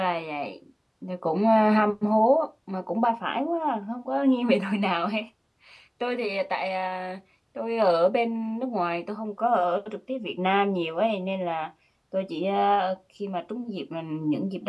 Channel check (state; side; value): identical; both; correlation 1.00